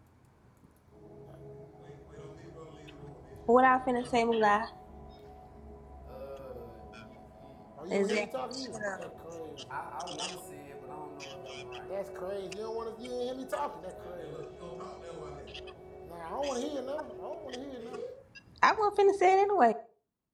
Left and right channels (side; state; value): both; identical; correlation 1.00